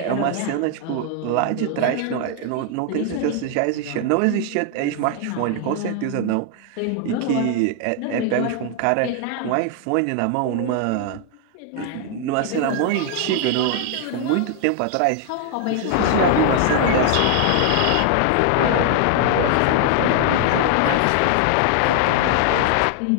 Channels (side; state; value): both; different; correlation 0.00